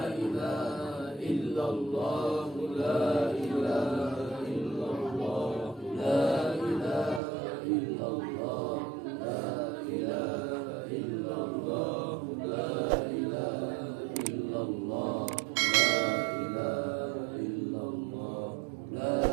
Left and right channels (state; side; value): drops out; left; at 7.2 s